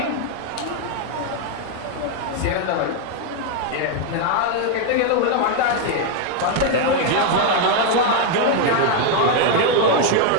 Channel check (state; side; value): different; both; correlation 0.01